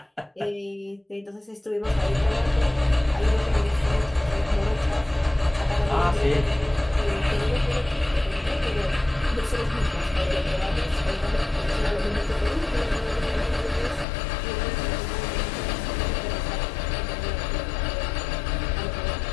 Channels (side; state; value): right; drops out; at 14.1 s